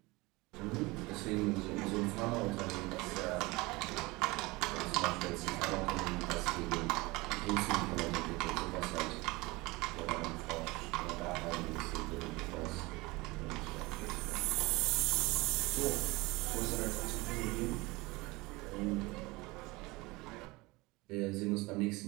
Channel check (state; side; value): quieter; left; 22.9 dB